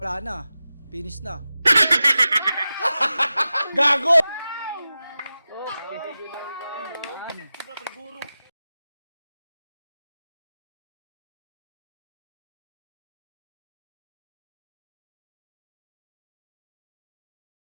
Wala na. Finish na. Gago!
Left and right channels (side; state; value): both; inverted; correlation -0.94